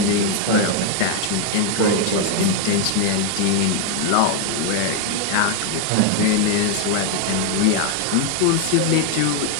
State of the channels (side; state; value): both; different; correlation 0.00